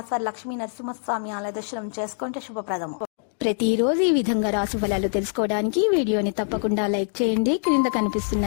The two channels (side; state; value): right; silent; digital silence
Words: వారి లక్ష్మీ నరసింహస్వామి ఆలయ దర్శనం చేసుకుంటే శుభప్రదము. ప్రతిరోజు ఈ విధంగా రాశి ఫలాలు తెలుసుకోవడానికి వీడియోని తప్పకుండా లైక్ చేయండి. క్రింద కనిపిస్తున్న